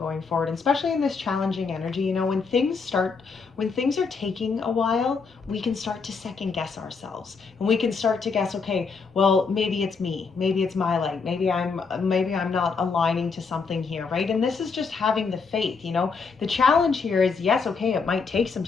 forward. And especially in this challenging energy, you know, when things are taking a while, we can start to second guess ourselves, and we can start to guess, okay, well, maybe it's me, maybe it's my light, maybe I'm not aligning to something here, right? And this is just having the faith, you know. The challenge here is, yes, okay, it might take some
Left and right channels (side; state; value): right; quieter; 5.0 dB